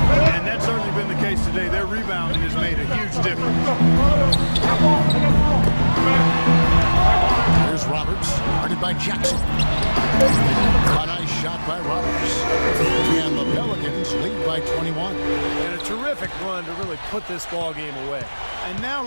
And that's certainly been the case today. Their rebounding has made a huge difference. Here's Roberts, guarded by Jackson. A nice shot by Roberts. And the Pelicans lead by 21. And a terrific run to really put this ball game away. And now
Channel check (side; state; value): both; inverted; correlation -1.00